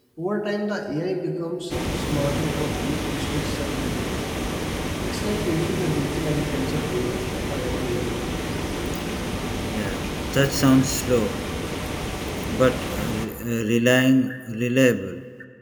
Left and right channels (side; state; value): both; identical; correlation 1.00